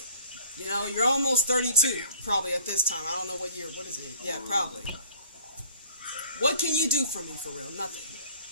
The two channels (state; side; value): inverted; both; correlation -0.50